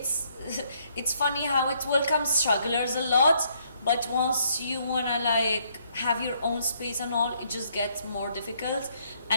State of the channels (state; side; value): inverted; both; correlation -0.70